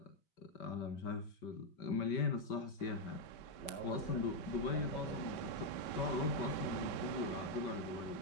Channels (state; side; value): late; right; 5.2 ms